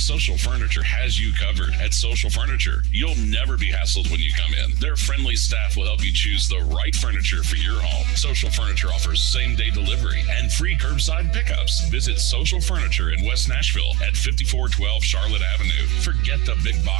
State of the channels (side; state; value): left; quieter; 17.3 dB